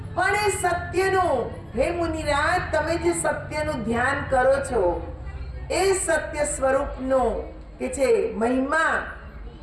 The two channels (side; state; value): both; identical; correlation 1.00